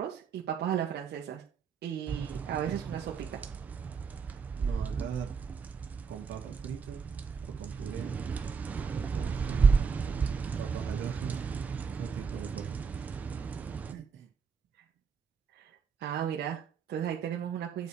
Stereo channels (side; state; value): left; quieter; 5.9 dB